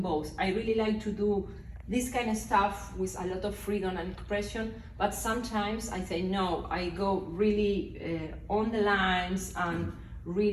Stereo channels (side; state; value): both; identical; correlation 1.00